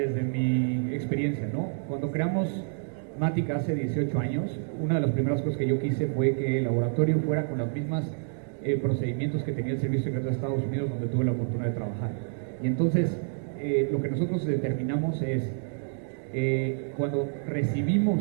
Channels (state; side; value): silent; left; digital silence